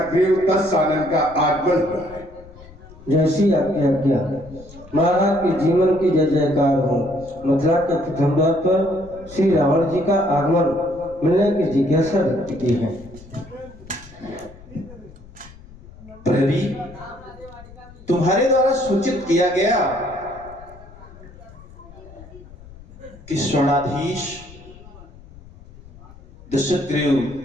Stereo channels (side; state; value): left; noise; rumble, 20 dB below the sound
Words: दशानन का आगमन हुआ है। जैसी आज्ञा महाराज के जीवन की जय जयकार हो। मथुरा के प्रथम द्वार पर श्री रावण जी का आगमन मिलने की जिज्ञासा व्यक्त की है। प्रहरी, तुम्हारे द्वारा सूचित किया गया कि स्वर्णाधीश दशग्रीव